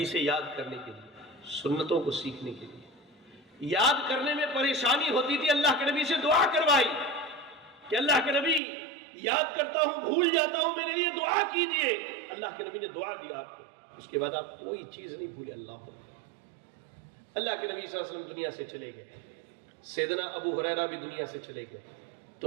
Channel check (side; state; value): left; drops out; at 8.6 s